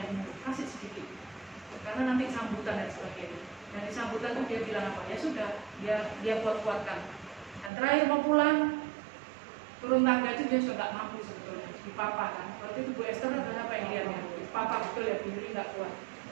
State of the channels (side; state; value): left; drops out; at 7.7 s